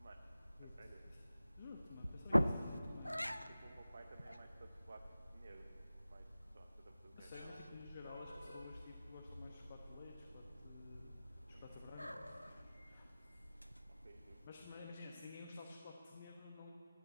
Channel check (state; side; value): inverted; both; correlation -0.97